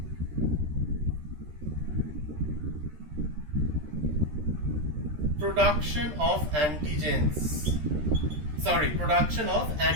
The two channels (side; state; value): left; late; 13 ms